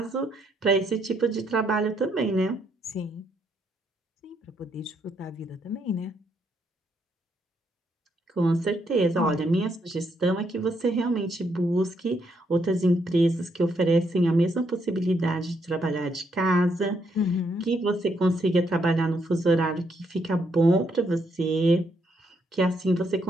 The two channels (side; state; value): both; normal; correlation 0.75